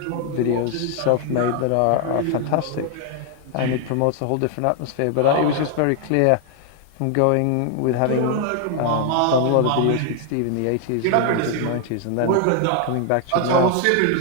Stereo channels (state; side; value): different; both; correlation 0.00